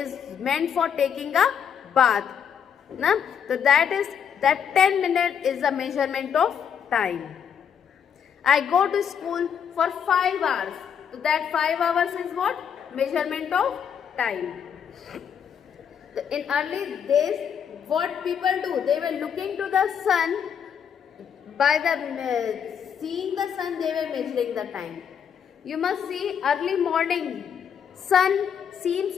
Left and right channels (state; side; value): quieter; right; 7.8 dB